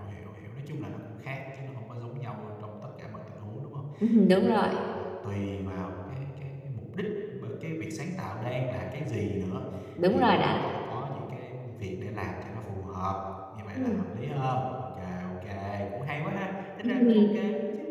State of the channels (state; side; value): identical; both; correlation 1.00